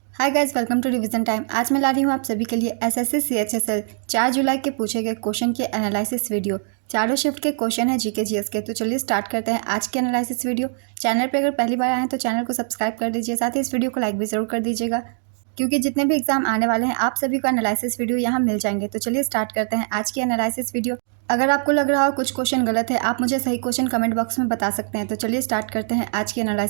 Hi guys, welcome to revision time. आज मैं ला रही हूँ आप सभी के लिए एसएससी सीएचएसएल 4 जुलाई के पूछे गए क्वेश्चन के एनालिसिस वीडियो। चारों शिफ्ट के क्वेश्चन है जीके जीएस के। तो चलिए स्टार्ट करते हैं आज के एनालिसिस वीडियो। चैनल पे अगर पहली बार आए हैं तो चैनल को सब्सक्राइब कर दीजिए, साथ ही इस वीडियो को लाइक भी जरूर कर दीजिएगा, क्योंकि जितने भी एग्जाम आने वाले हैं आप सभी को एनालिसिस वीडियो यहाँ मिल जाएंगे। तो चलिए स्टार्ट करते हैं आज की एनालिसिस वीडियो। अगर आपको लग रहा हो कुछ क्वेश्चन गलत है, आप मुझे सही क्वेश्चन कमेंट बॉक्स में बता सकते हैं। तो चलिए स्टार्ट करते हैं आज की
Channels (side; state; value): left; silent; 58 dB below the other